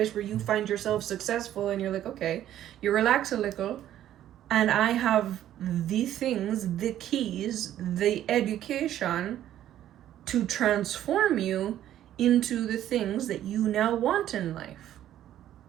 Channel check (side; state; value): left; quieter; 12.0 dB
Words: where you find yourself successful and you're like, okay, you relax a little, and I have the things, the keys, the education to transform you into the things that you now want in life.